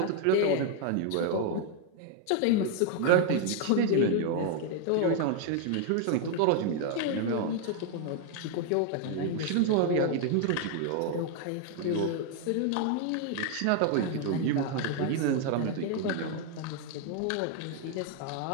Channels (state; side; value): different; both; correlation 0.00